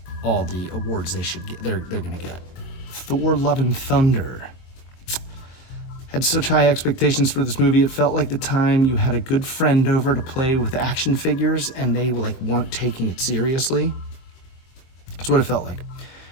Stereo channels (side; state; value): right; late; 23 ms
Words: all the awards they should get. They're gonna get. Thor: Love and Thunder. Had such high expectations for this movie. It felt like the time you had a good friend over to play with action figures and they weren't taking it seriously. That's what it felt like.